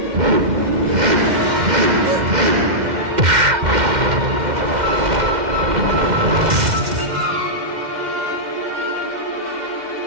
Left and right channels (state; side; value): late; left; 2.1 ms